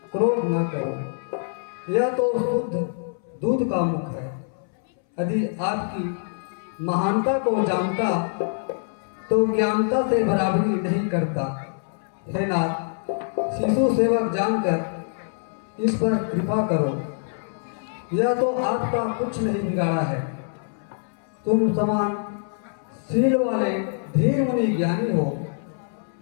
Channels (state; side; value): silent; right; 60 dB below the other